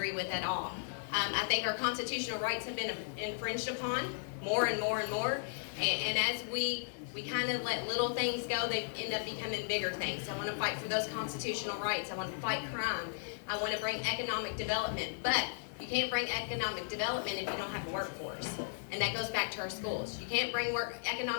with at all. I think our constitutional rights have been infringed upon more and more and more. And as we kind of let little things go, they end up becoming bigger things. I want to fight for those constitutional rights. I want to fight crime. I want to bring economic development. But you can't bring economic development if you don't have a workforce. And that goes back to our schools. You can't bring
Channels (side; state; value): right; silent; digital silence